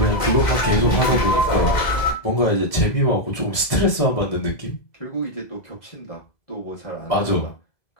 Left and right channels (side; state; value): right; late; 2.0 ms